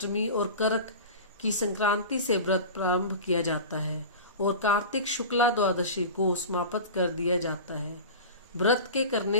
और करक की संक्रांति से व्रत प्रारंभ किया जाता है और कार्तिक शुक्ला द्वादशी को समाप्त कर दिया जाता है। व्रत के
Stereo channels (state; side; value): inverted; both; correlation -0.32